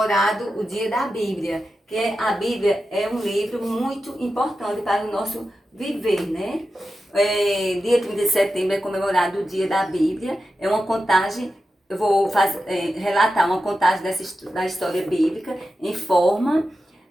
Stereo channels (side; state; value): both; normal; correlation 0.91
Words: o dia da Bíblia. Que a Bíblia é um livro muito importante para o nosso viver, né? Dia 30 de setembro é comemorado o dia da Bíblia. É uma contagem. Eu vou relatar uma contagem da história bíblica em forma